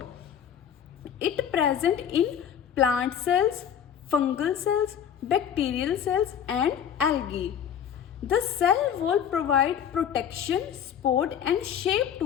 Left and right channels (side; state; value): right; quieter; 8.7 dB